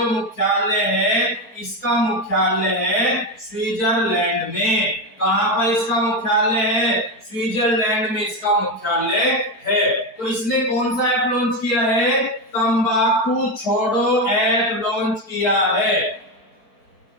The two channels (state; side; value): late; right; 4.5 ms